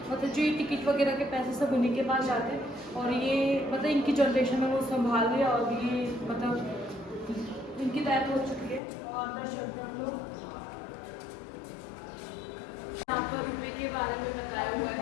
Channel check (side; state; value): right; drops out; at 8.8 s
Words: मतलब जो ये टिकट वगैरह के पैसे सब उन्हीं के पास जाते हैं, और ये मतलब इनकी जनरेशन में वो संभाल रही है, और ये मतलब इनकी डेथ हो चुकी है। और अंदर चलते हैं हम लोग। यहाँ पर रुपये के बारे में बताया हुआ है,